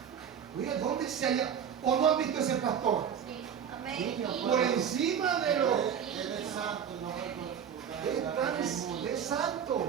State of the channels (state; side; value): quieter; left; 8.2 dB